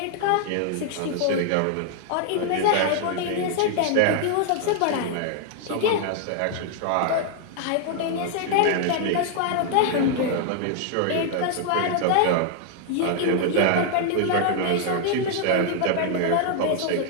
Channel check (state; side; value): different; both; correlation 0.00